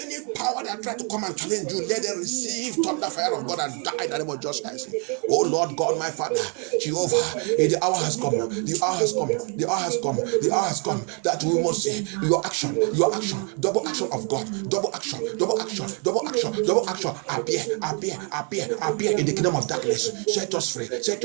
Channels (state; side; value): quieter; left; 37.5 dB